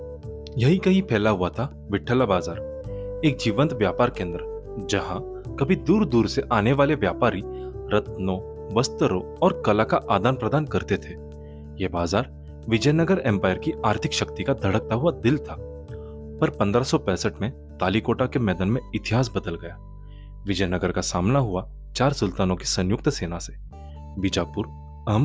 यही कहीं फैला हुआ था विट्ठला बाजार, एक जीवंत व्यापार केंद्र, जहां कभी दूर दूर से आने वाले व्यापारी रत्नों, वस्त्रों और कला का आदान प्रदान करते थे। यह बाजार विजयनगर एम्पायर की आर्थिक शक्ति का धड़कता हुआ दिल था। पर 1565 में तालीकोटा के मैदान में इतिहास बदल गया। विजयनगर का सामना हुआ 4 सुल्तानों की संयुक्त सेना से। बीजापुर,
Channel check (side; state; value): both; identical; correlation 1.00